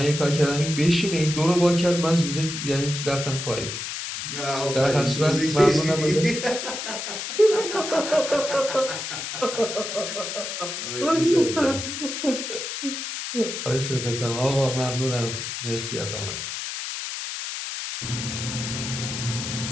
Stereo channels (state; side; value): noise; left; hiss, 5 dB below the sound